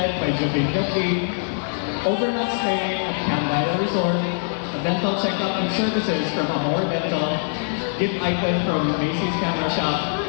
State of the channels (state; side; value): silent; right; digital silence